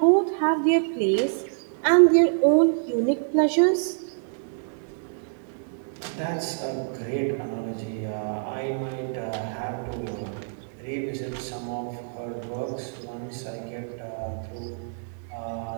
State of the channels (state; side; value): silent; left; 61 dB below the other